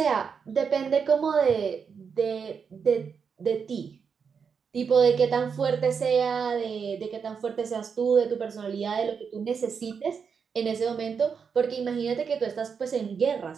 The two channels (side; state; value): left; quieter; 6.3 dB